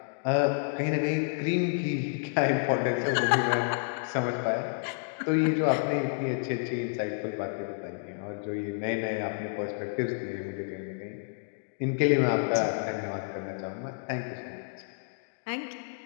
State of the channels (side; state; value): right; silent; digital silence